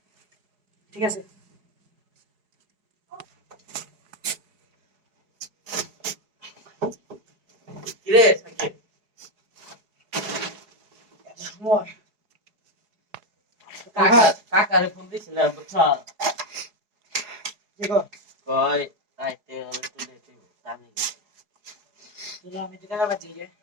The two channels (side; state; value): left; late; 4.8 ms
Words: ঠিক আছে কিরে সাকিব সময় কাকারে ফোন দিছিলাম বুঝছ কি গো কই আইতে তুলে তুই জানি তুই আমি তো কাকার বাদ যাই